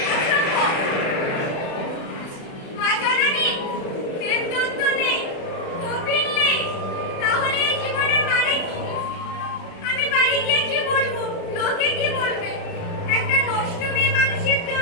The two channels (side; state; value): right; late; 36 ms